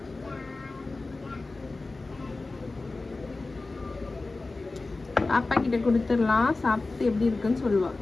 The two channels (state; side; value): quieter; right; 3.4 dB